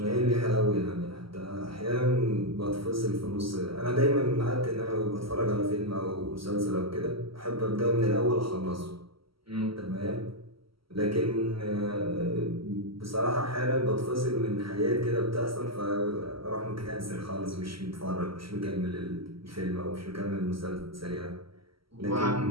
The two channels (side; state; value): left; late; 0.75 ms